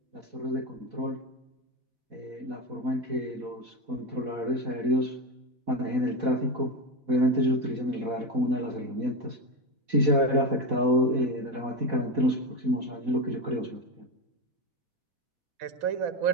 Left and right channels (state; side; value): late; left; 4.1 ms